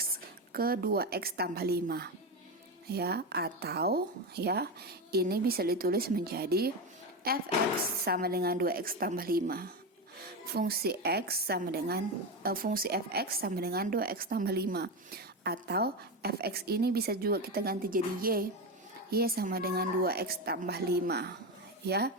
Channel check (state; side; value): normal; both; correlation 0.15